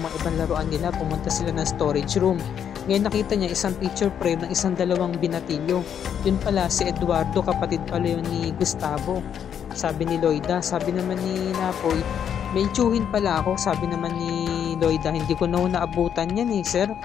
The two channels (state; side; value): quieter; right; 8.6 dB